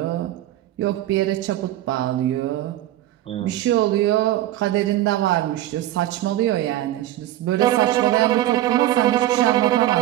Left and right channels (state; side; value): quieter; left; 14.0 dB